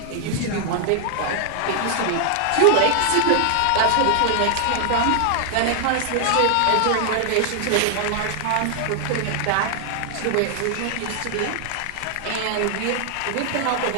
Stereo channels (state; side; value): different; both; correlation 0.00